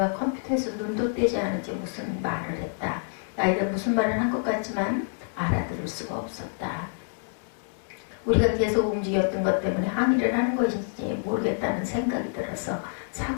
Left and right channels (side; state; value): right; silent; digital silence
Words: 컴퓨터에서 눈도 떼지 않은지 무슨 말을 했다. 나이가 무슨 말을 한 것 같지만 알아들을 수가 없었다. 우리가 계속 움직였던 것 때문에 항의를 하는 것인지 모르겠다는 생각이 들어서